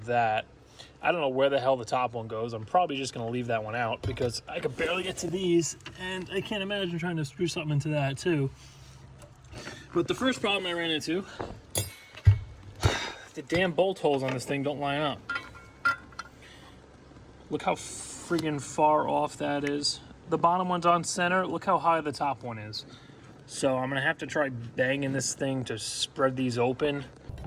that. I don't know where the hell the top one goes. I'm probably just going to leave that one out because I could barely get to these, and I can't imagine trying to screw something into that too. But the first problem I ran into, the damn bolt holes on this thing don't line up. Look how friggin' far off that is. The bottom one's on center. Look how high the top one is. So I'm gonna have to try banging this thing to spread these open.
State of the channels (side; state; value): both; identical; correlation 1.00